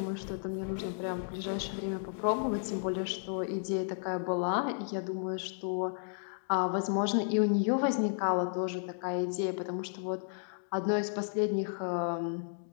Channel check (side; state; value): right; silent; digital silence